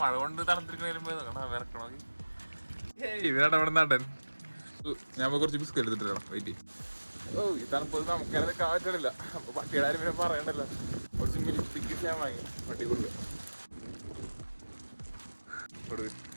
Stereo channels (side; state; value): both; inverted; correlation -1.00